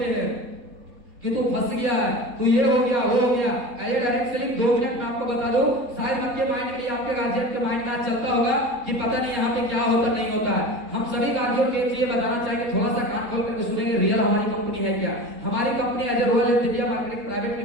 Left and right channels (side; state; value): left; late; 3.8 ms